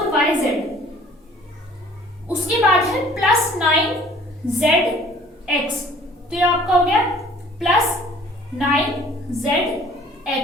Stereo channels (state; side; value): normal; both; correlation 0.53